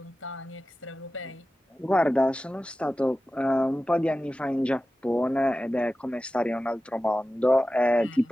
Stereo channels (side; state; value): both; normal; correlation 0.94